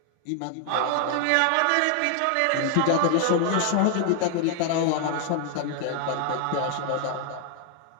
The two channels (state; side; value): different; both; correlation 0.00